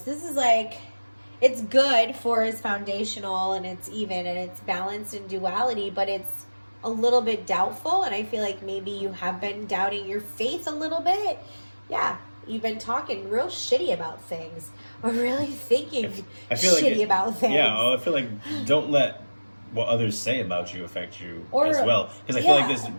This is like, it's good for it's foundational and it's even and it's balanced in duality, but it's a little bit doubtful, and I feel like maybe you have been doubting your faith a little bit. Yeah, you've been talking real shitty about things or really thinking shitty about things. Yeah, I feel like don't let what others say about you affect you as well. Because I feel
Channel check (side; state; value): both; inverted; correlation -1.00